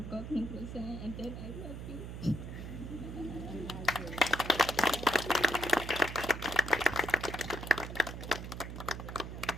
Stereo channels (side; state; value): right; noise; hum, 8 dB below the sound